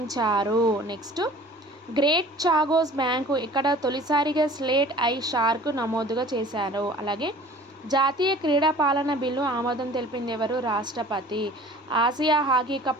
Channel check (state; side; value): normal; both; correlation 0.46